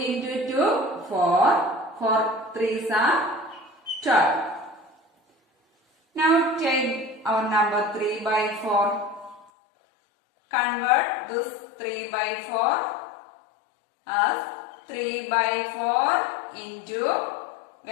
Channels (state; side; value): drops out; right; at 9.5 s